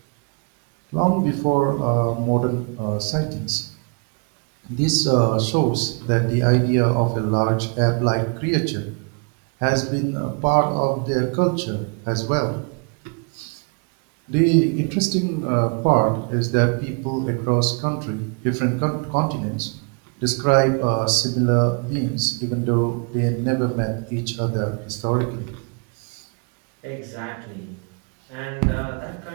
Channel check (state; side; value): quieter; left; 37.5 dB